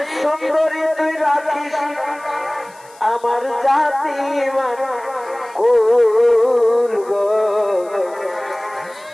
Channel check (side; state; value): left; noise; hiss, 26 dB below the sound